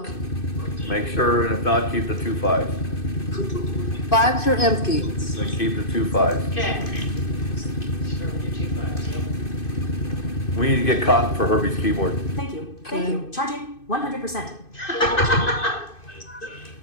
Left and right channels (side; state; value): right; late; 2.6 ms